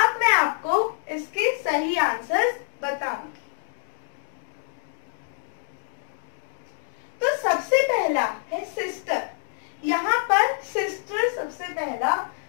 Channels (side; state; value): right; silent; digital silence